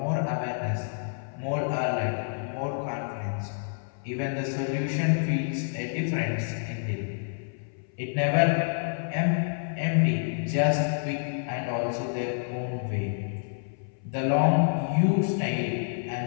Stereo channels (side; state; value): right; silent; 59 dB below the other